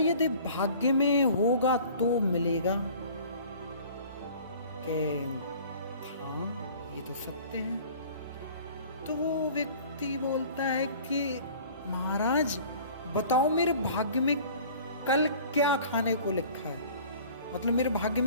भाग्य में होगा तो मिलेगा। के हाँ, ये तो सत्य है। तो वो व्यक्ति बोलता है कि महाराज बताओ मेरे भाग्य में कल क्या खाने को लिखा है, मतलब मेरे भाग्य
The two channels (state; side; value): inverted; both; correlation -0.47